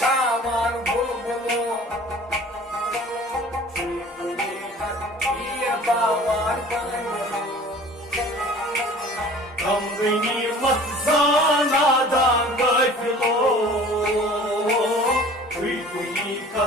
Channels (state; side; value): normal; both; correlation 0.46